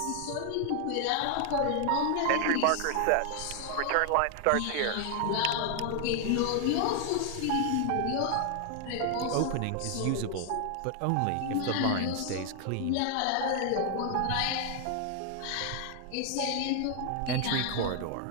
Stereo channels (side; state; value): both; different; correlation 0.00